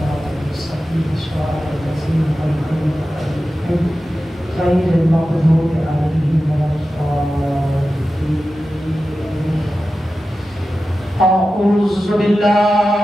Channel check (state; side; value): normal; both; correlation 0.93